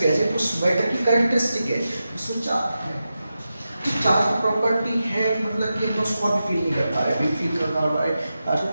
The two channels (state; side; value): inverted; both; correlation -0.91